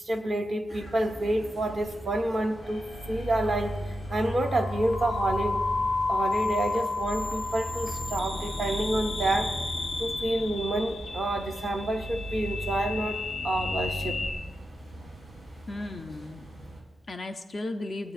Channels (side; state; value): both; normal; correlation 0.89